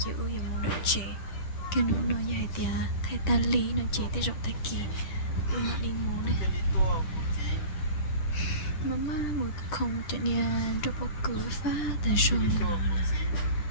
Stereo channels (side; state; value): right; late; 10 ms